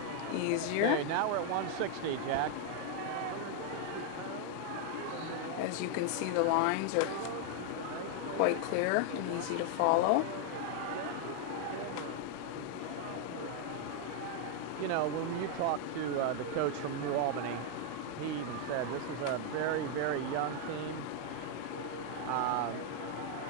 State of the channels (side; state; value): both; different; correlation 0.00